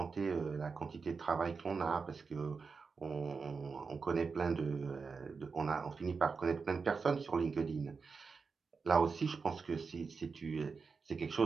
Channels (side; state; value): left; quieter; 5.0 dB